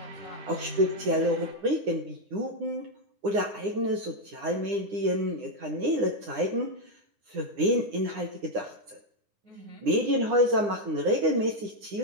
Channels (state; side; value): late; left; 9.8 ms